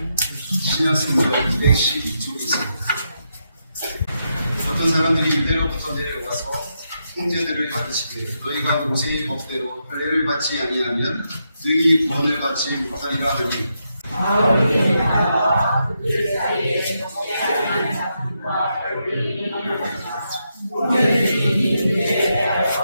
신약성경 212쪽에 있습니다. 어떤 사람들이 유대로부터 내려와서 형제들을 가르치되 너희가 모세의 법대로 할례를 받지 아니하면 너희 구원을 받지 못하리라 하니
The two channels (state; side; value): inverted; both; correlation -0.83